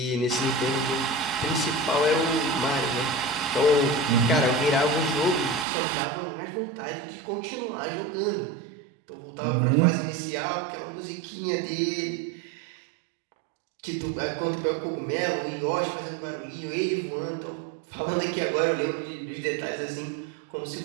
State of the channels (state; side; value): drops out; left; at 5.7 s